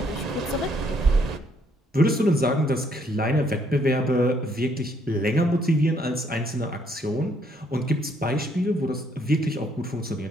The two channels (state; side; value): normal; both; correlation 0.68